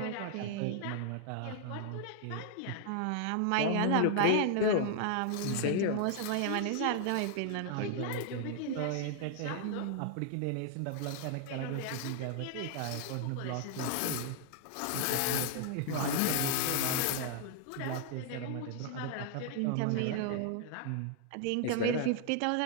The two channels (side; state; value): both; different; correlation 0.00